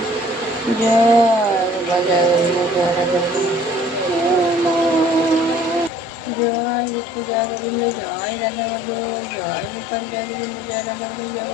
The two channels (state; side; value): normal; both; correlation 0.54